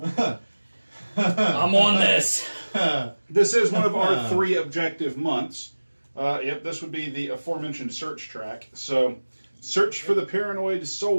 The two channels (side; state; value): both; inverted; correlation -1.00